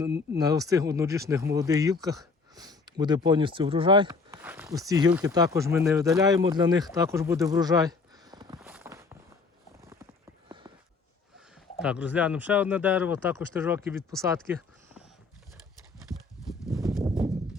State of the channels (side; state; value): right; quieter; 4.3 dB